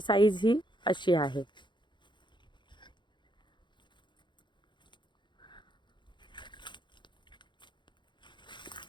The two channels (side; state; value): right; late; 0.23 ms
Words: साईज ही अशी आहे।